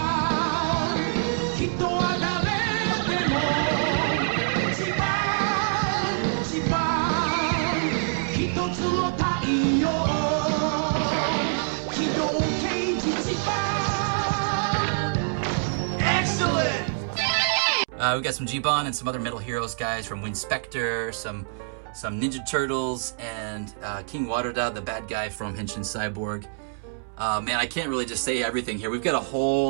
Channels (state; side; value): silent; left; 61 dB below the other